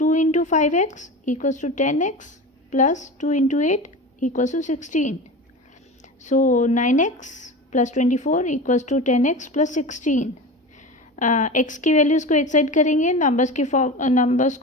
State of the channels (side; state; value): both; normal; correlation 0.29